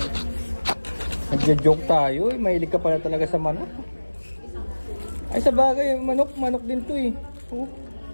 Nagja-joke tayo eh. Mahilig ka pala talaga sa manok. Ay sa bagay, manok din to eh. Oh.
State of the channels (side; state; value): both; inverted; correlation -1.00